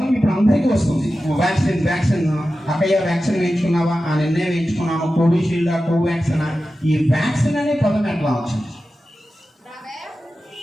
ఇప్పుడు అందరికీ వస్తుంది. వ్యాక్సిన్ అక్కయ్య వ్యాక్సిన్ వేయించుకున్నావా, ఆ నిన్నే వేయించుకున్నాము, కోవిషీల్డా, కోవాక్సిన్. ఈ వ్యాక్సిన్ అనే పదం ఎట్లా వచ్చింది?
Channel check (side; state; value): both; normal; correlation 0.93